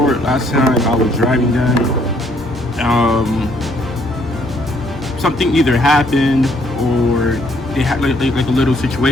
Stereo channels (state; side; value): normal; both; correlation 0.66